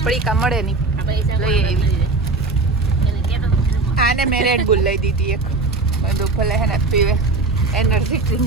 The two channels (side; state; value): left; quieter; 3.5 dB